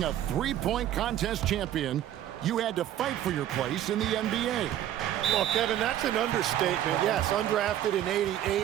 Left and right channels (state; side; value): quieter; left; 11.8 dB